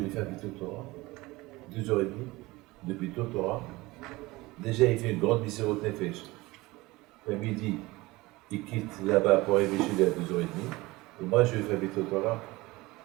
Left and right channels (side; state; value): left; quieter; 21.0 dB